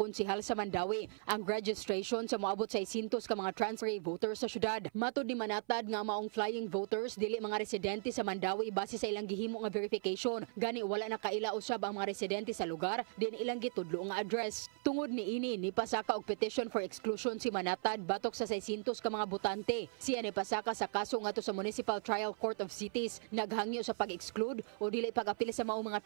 sa Mandaue ang registration sa moabot sa 600 ka mga transferee voters sa syudad. Matud ni Manatad nga maong flying voters dili mga residente sa Mandaue base sa ilang gihimo nga verification. Gani wala na kaila usab ang mga residente sa lugar din ilang gitudlo nga address. Tungod ni ini nipasaka og petition for exclusion si Manatad batok sa 600 ka mga botante. Siya nipasaka sa kaso ngadto sa Municipal Trial Court of Cities naghangyo sa pag-exclude o dili pag-apil sa maong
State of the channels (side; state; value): left; silent; 53 dB below the other